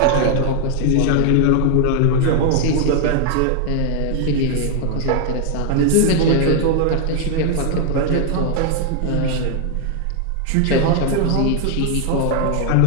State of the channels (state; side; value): different; both; correlation 0.00